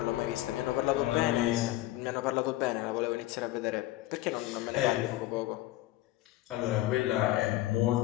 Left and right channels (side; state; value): right; quieter; 16.4 dB